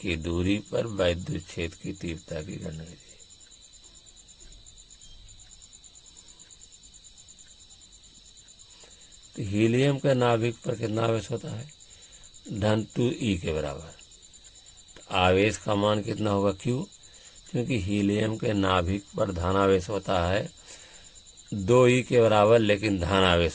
दूरी पर वैद्युत क्षेत्र की तीव्रता की गणना कीजिए। तो हीलियम के नाभिक पर कितना आवेश होता है? धन 2e के बराबर। तो आवेश का मान कितना होगा? Q, क्योंकि हीलियम के नाभिक पर धन आवेश होता है 2e के बराबर, लेकिन धन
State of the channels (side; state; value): both; identical; correlation 1.00